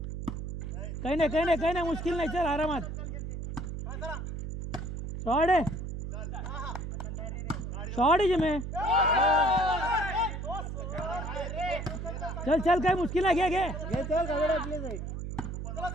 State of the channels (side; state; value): right; noise; hum, 5 dB below the sound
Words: काही नाही मुश्किल नाही. चल आरामात. शॉट आहे जिमे. चल चल काय मुश्किल आहे, घे घे